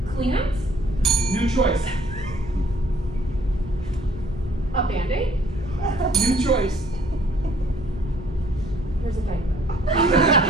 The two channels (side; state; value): both; normal; correlation 0.60